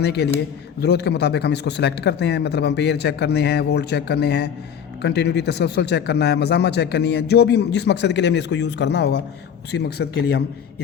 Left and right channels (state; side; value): quieter; right; 8.0 dB